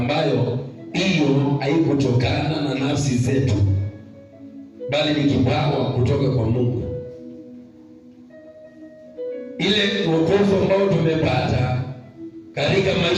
hiyo haikutokana na nafsi zetu, bali ni kipawa kutoka kwa Mungu. Ile wokovu ambao tumepata katika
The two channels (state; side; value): identical; both; correlation 1.00